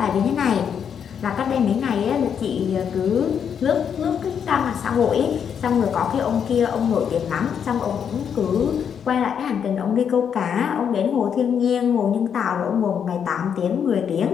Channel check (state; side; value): quieter; right; 7.7 dB